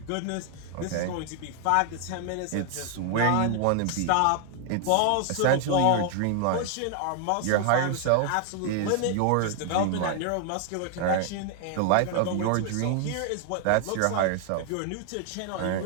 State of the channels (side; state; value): both; different; correlation 0.00